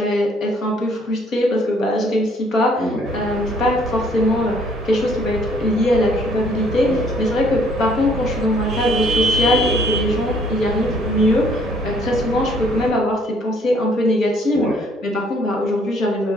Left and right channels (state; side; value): normal; both; correlation 0.63